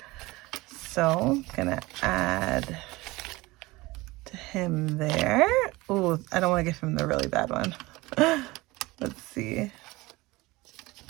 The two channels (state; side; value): quieter; left; 21.3 dB